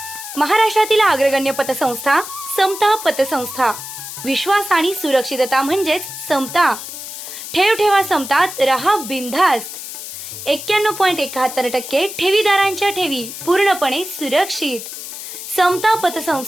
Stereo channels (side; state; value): left; noise; hiss, 10 dB below the sound